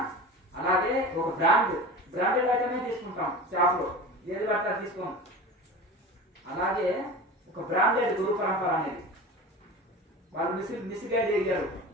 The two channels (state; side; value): normal; both; correlation 0.33